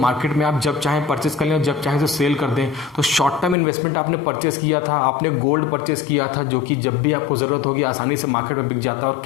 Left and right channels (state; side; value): drops out; right; at 3.6 s